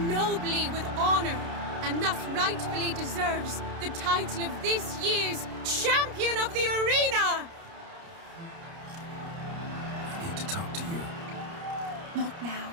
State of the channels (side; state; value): left; late; 29 ms